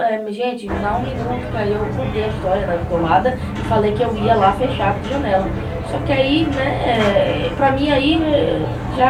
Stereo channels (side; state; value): both; identical; correlation 1.00